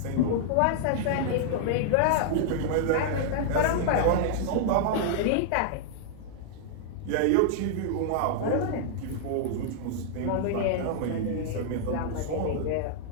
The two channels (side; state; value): both; different; correlation -0.01